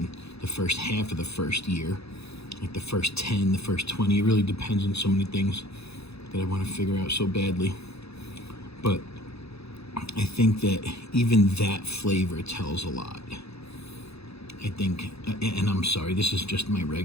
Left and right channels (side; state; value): right; late; 0.79 ms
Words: the first half of the first year, like the first 10, the first 20, it really depends on so many things that I want to figure out so badly. But I think that even that flavor tells a lot. I think, and I'm sorry, this is just my